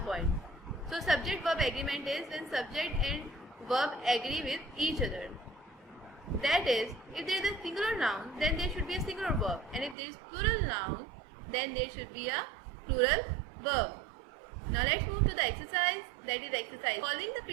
point. So subject-verb agreement is when subject and verb agree with each other. That is, if there is a singular noun, then there should be a singular verb, and if there is plural noun, then there should be a plural verb. Now let's move to the exercise, that is exercise. Following the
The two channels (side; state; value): left; drops out; at 10.0 s